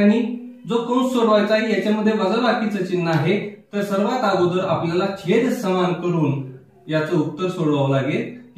जो कंस सोडवायचा आहे याच्यामध्ये वजाबाकीचं चिन्ह आहे, तर सर्वात अगोदर आपल्याला छेद समान करून याचं उत्तर सोडवावं लागेल।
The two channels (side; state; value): both; identical; correlation 1.00